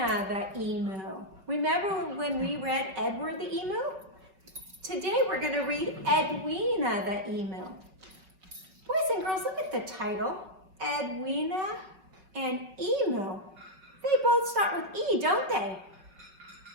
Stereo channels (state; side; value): late; left; 5.3 ms